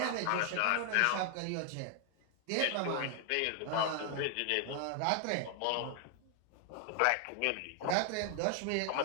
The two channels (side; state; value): both; different; correlation 0.00